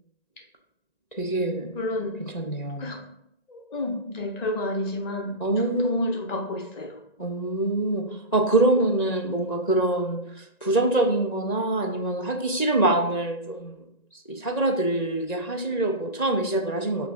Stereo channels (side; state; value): right; late; 1.9 ms